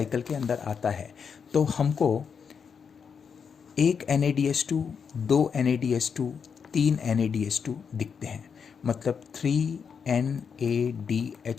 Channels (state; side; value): quieter; right; 6.5 dB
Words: के अंदर आता है तो हमको एक NADH2, 2 NADH2, 3 NADH2 दिखते हैं। मतलब